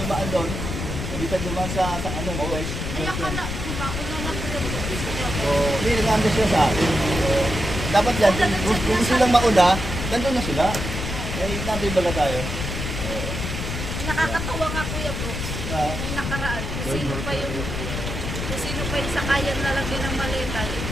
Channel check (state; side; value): noise; left; rumble, 4 dB below the sound